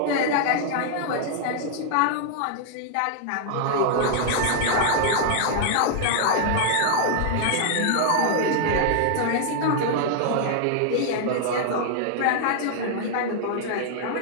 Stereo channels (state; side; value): different; both; correlation -0.01